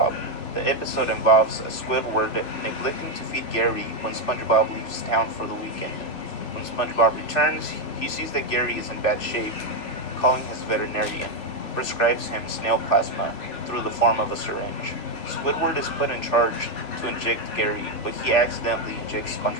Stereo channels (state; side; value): late; right; 3.0 ms